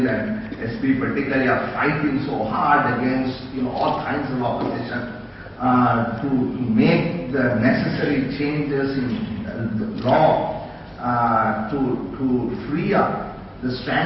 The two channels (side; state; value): both; identical; correlation 1.00